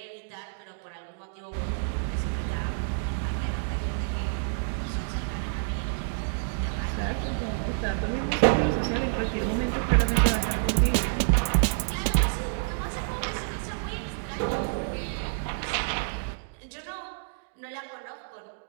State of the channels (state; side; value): silent; left; digital silence